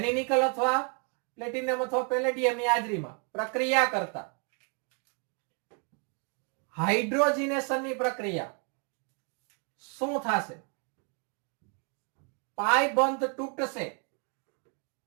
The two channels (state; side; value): quieter; left; 39.3 dB